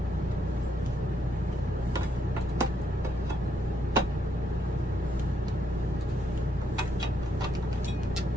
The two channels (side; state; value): both; normal; correlation 0.75